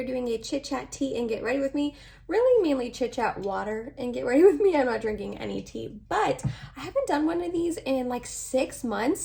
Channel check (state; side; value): identical; both; correlation 1.00